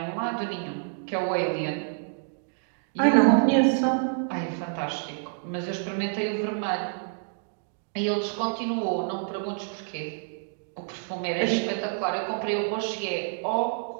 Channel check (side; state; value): left; silent; digital silence